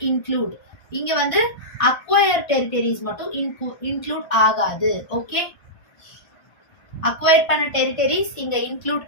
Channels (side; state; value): right; late; 1.5 ms